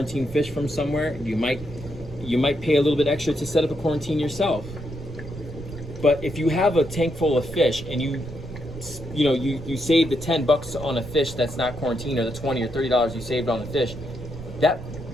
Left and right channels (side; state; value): right; noise; rumble, 14 dB below the sound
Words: fish from somewhere. You might pay a little bit extra to set up a quarantine yourself. But if you have a tank full of fish and you save the $10 on a fish that's not quarantined, or the $20 or $30 you saved on the fish, that